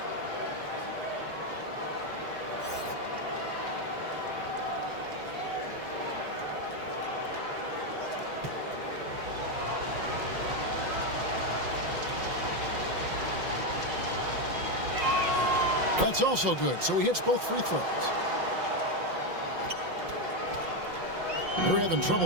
That's also good, so he hits both free throws. They're having trouble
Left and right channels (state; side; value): late; left; 5.6 ms